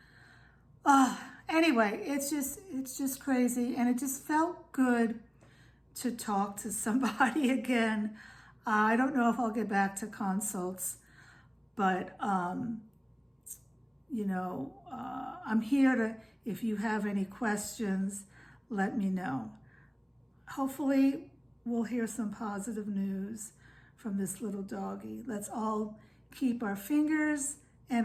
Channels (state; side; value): identical; both; correlation 1.00